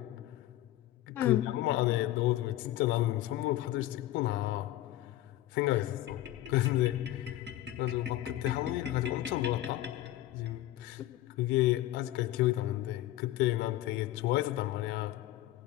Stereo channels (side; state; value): right; quieter; 14.7 dB